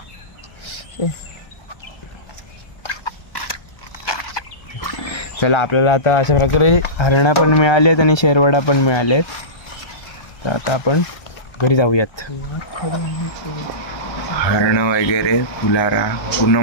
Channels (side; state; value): right; late; 1.3 ms